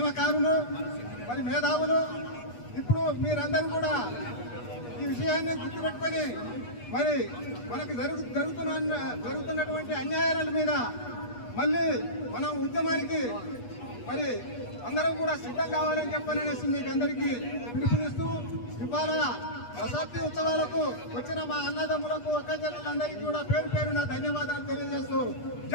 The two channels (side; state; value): right; late; 8.3 ms